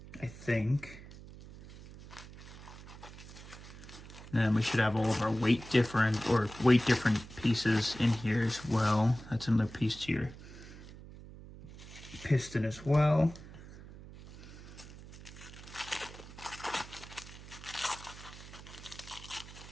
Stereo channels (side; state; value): right; noise; hum, 16 dB below the sound